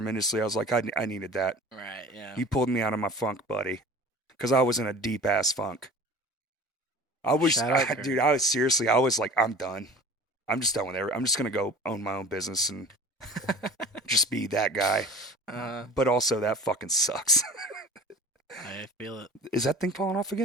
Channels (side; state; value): both; normal; correlation 0.40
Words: I was like, I needed that. Right, yeah. He pulled me out of my funk, buddy, because I was in a deep ass funk. I was, dude, I was like, I'm done. I'm just done with it. I'm just going to go own my own business and just be that guy. But also, that fucking sucks. I feel it. Is that thing falling off